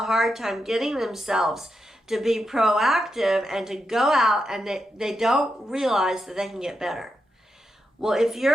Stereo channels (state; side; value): normal; both; correlation 0.86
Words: hard time getting themselves to be proactive and to go out, and they don't realize that they can get better. Well, if